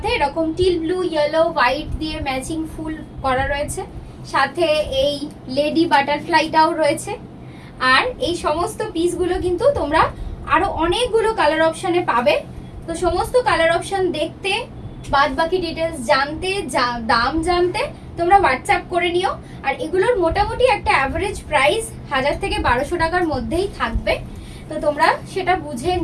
এরকম টিল ব্লু, ইয়েলো, হোয়াইট দিয়ে ম্যাচিং ফুল করা রয়েছে। সাথে এই লেডি বাটারফ্লাইটাও রয়েছে। আর এই সমস্ত পিসগুলো কিন্তু তোমরা আরো অনেকগুলো কালার অপশনে পাবে। তো সমস্ত কালার অপশন দেখতে, বাদ বাকি ডিটেলস জানতে, দাম জানতে তোমরা হোয়াটসঅ্যাপ করে নিও। আর এগুলোর মোটামুটি একটা অ্যাভারেজ প্রাইস 1000 থেকে 1200 টাকার মধ্যেই থাকবে। তো তোমরা সেটা বুঝে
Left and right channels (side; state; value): both; identical; correlation 1.00